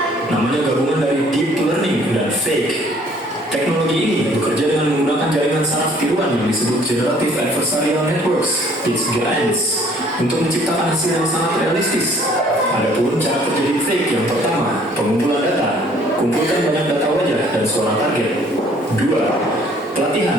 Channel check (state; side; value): normal; both; correlation 0.58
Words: Namanya gabungan dari deep learning dan fake. Teknologi ini bekerja dengan menggunakan jaringan saraf tiruan yang disebut Generative Adversarial Networks (GANs) untuk menciptakan hasil yang sangat realistis. Adapun cara kerja deepfake yang pertama, pengumpulan data. Kumpulkan banyak data wajah dan suara target. 2.